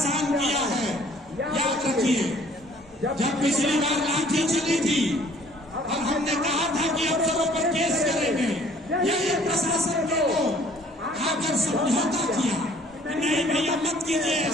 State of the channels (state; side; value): normal; both; correlation 0.57